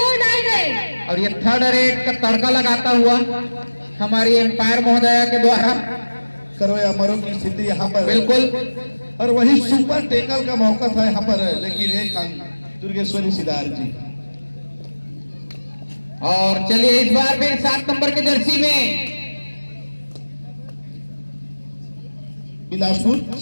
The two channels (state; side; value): inverted; both; correlation -1.00